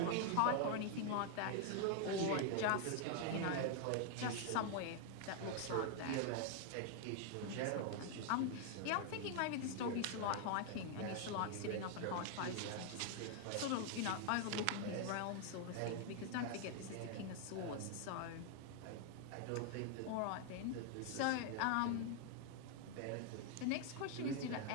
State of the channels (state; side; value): different; both; correlation 0.00